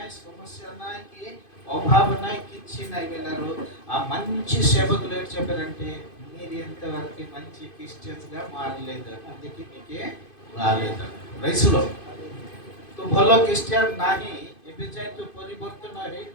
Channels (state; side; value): late; right; 2.5 ms